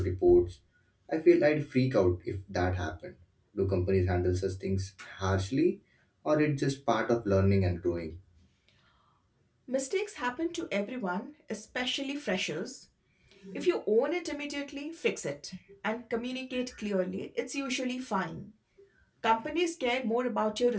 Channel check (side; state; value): both; identical; correlation 1.00